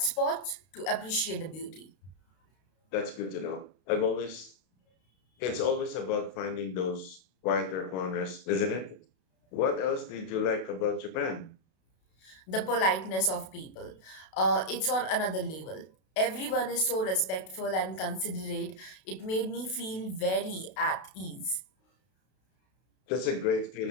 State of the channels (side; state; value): right; late; 32 ms